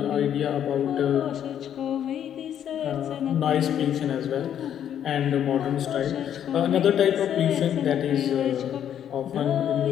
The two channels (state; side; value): quieter; right; 9.7 dB